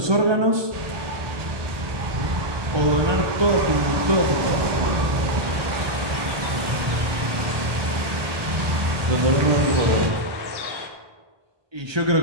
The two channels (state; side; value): late; left; 1.2 ms